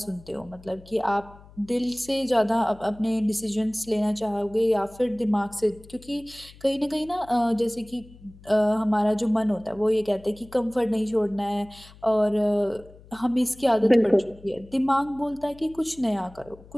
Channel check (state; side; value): noise; left; hum, 22 dB below the sound